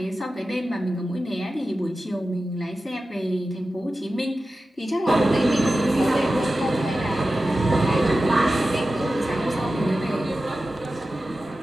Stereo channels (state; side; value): normal; both; correlation 0.93